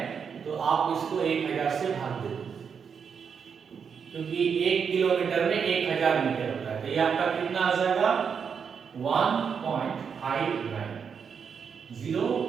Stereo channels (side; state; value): left; quieter; 6.6 dB